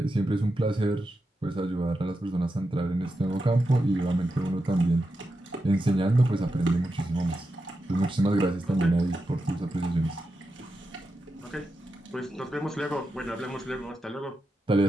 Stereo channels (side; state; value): both; normal; correlation 0.88